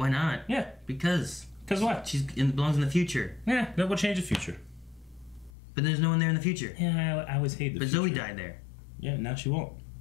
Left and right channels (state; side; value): drops out; right; at 5.5 s